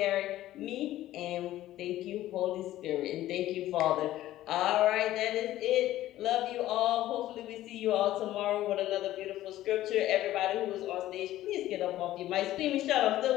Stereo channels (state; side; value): quieter; right; 14.4 dB